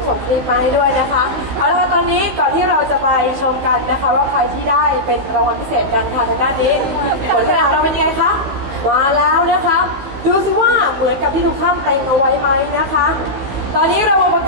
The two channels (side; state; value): left; late; 15 ms